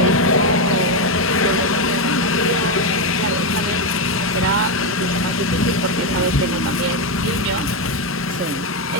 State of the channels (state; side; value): normal; both; correlation 0.07